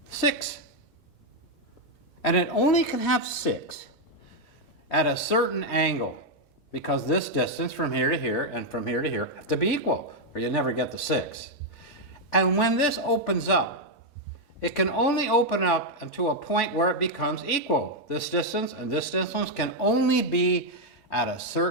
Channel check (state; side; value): normal; both; correlation 0.00